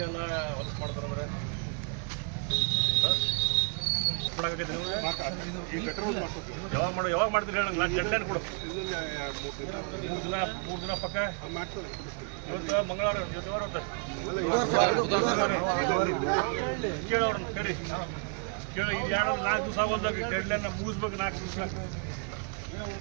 ಹೊಲಸು ಮಾಡ್ತಾರೆ ಯಾವಾಗ ಮಾಡ್ತೀರಿ ಹೇಳಿ ನಾನು ಡೆಡ್ ಲೈನ್ ಕೊಡು. 3 ದಿನ ಪಕ್ಕ ಇವತ್ತು ಮಂಗಳವಾರ ಕೇಳೋರು ಕರಿ ಕೇಳಿ ಇದು 4 ದಿವಸ ಆಗೋದಾಗ ಡೆಡ್ ಲೈನ್ ಮುಗಿಸ್ಬೇಕು. 4 ದಿವಸ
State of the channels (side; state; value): left; quieter; 39.4 dB